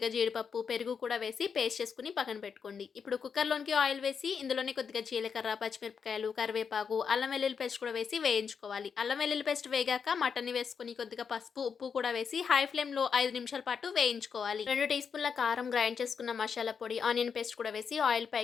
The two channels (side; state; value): right; quieter; 6.4 dB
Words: జీడిపప్పు, పెరుగు కూడా వేసి పేస్ట్ చేసుకొని పక్కన పెట్టుకోండి. ఇప్పుడు కుక్కర్‌లోనికి ఆయిల్ వేసి ఇందులోనే కొద్దిగా జీలకర్ర, పచ్చిమిరపకాయలు, కరివేపాకు, అల్లం వెల్లుల్లి పేస్ట్ కూడా వేసి వేయించుకోవాలి. అల్లం వెల్లుల్లి పేస్ట్ వేగాక మటన్‌ని వేసుకొని కొద్దిగా పసుపు, ఉప్పు కూడా వేసి హై ఫ్లేమ్‌లో 5 నిమిషాల పాటు వేయించుకోవాలి. 2 టీ స్పూన్ల కారం, గ్రైండ్ చేసుకున్న మసాలా పొడి, ఆనియన్ పేస్ట్ కూడా వేసి ఆయిల్